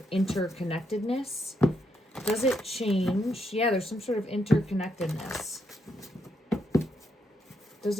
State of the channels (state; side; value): normal; both; correlation 0.79